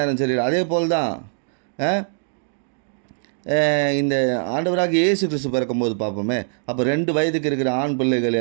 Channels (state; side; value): silent; left; digital silence